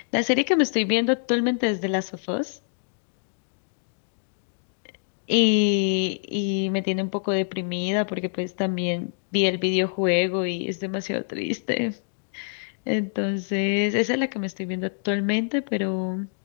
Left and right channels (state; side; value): silent; right; digital silence